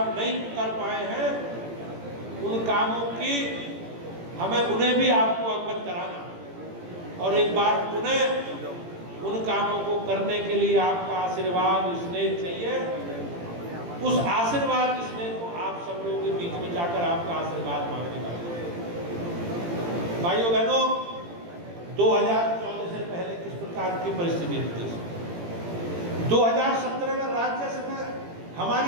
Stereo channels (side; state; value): left; late; 18 ms